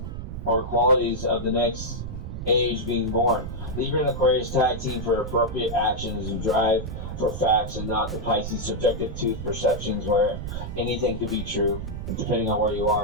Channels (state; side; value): noise; right; rumble, 7 dB below the sound